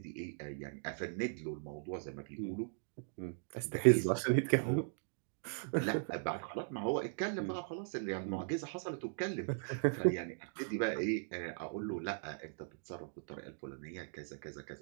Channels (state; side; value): silent; left; digital silence